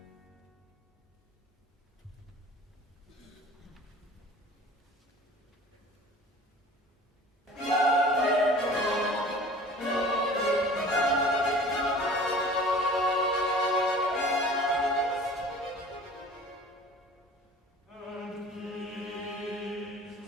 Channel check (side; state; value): both; normal; correlation 0.45